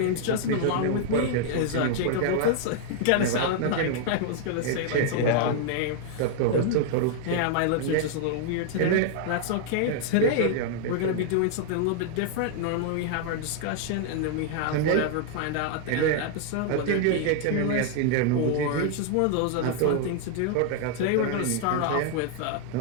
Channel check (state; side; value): different; both; correlation 0.00